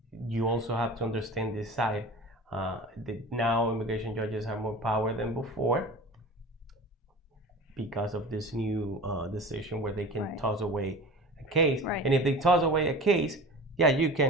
you also have to understand this side. That now immigration judges have more power than before because of this new decision where they can toss away a case. And if they toss away a case, yeah, you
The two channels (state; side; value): normal; both; correlation 0.36